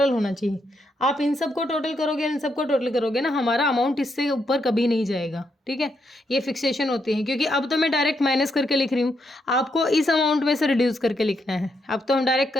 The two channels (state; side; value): normal; both; correlation 0.79